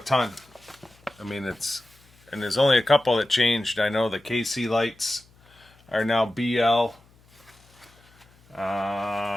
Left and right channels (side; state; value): left; noise; hum, 30 dB below the sound